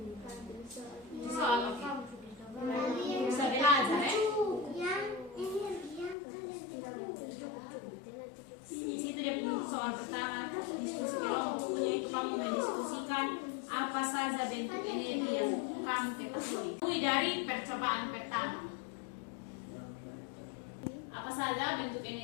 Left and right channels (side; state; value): right; drops out; at 6.2 s